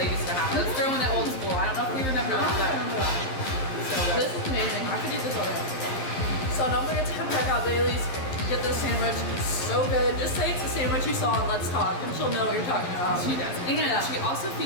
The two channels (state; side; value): late; right; 11 ms